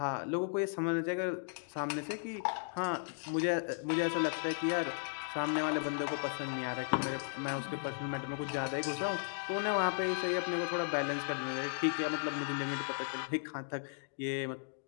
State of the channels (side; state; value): right; silent; digital silence